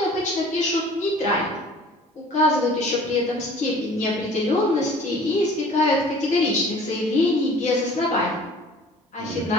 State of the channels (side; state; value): both; normal; correlation 0.48